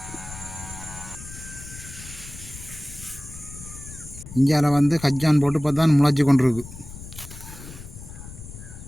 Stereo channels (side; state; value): left; noise; rumble, 14 dB below the sound